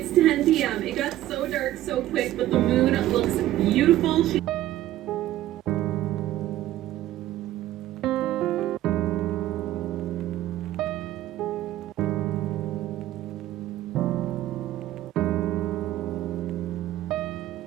10 p.m. It got so dark so quick, but the moon looks beautiful.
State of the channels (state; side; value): quieter; left; 14.1 dB